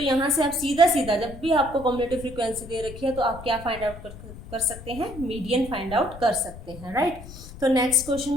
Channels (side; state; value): left; noise; rumble, 14 dB below the sound